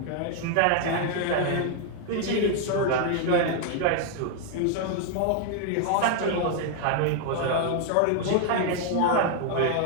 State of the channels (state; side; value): different; both; correlation 0.00